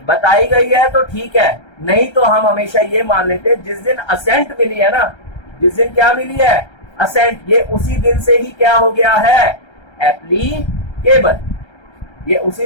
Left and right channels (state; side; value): late; right; 1.3 ms